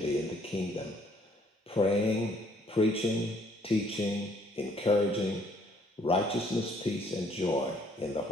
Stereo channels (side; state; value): both; normal; correlation 0.64